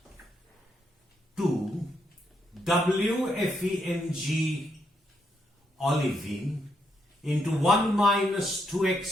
2 WFEMG olivine into 1 minus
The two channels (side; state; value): both; normal; correlation 0.78